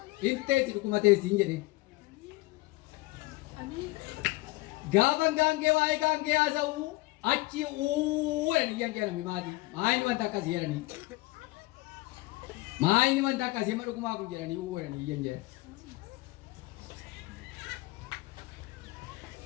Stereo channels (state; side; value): quieter; right; 21.1 dB